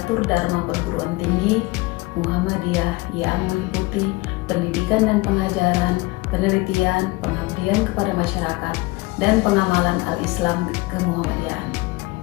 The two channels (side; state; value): right; quieter; 22.7 dB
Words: dharma perguruan tinggi Muhammadiyah yang meliputi pendidikan dan pengajaran, penelitian, pengabdian kepada masyarakat, dan pengamalan al-Islam kemuhammadiyahan.